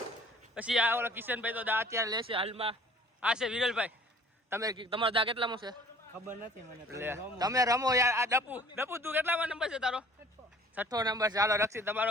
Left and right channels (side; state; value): both; normal; correlation 0.51